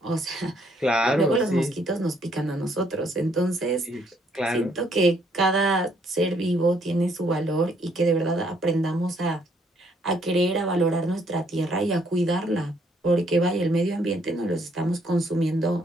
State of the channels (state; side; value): normal; both; correlation 0.68